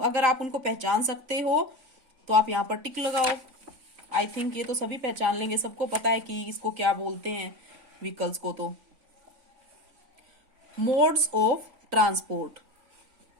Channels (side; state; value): left; late; 3.5 ms